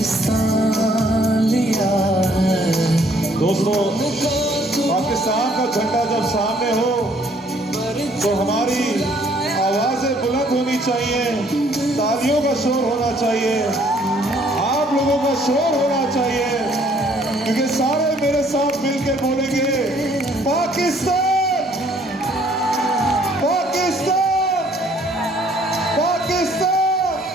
लिया है। दोस्तों, पाकिस्तान का झंडा जब सामने हो तो हमारी आवाजें बुलंद होनी चाहिए, तालियों का शोर होना चाहिए, आप लोगों का शोर होना चाहिए, क्योंकि सारे मेरे साथ मिलकर बोलेंगे पाकिस्तान, पाकिस्तान, पाकिस्तान।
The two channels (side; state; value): both; normal; correlation 0.62